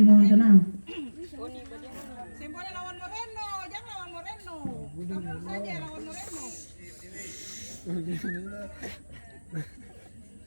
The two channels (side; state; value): both; inverted; correlation -1.00